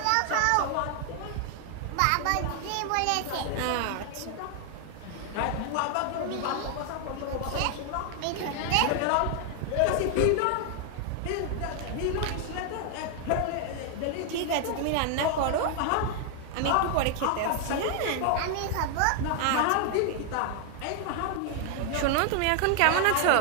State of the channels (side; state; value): both; different; correlation 0.00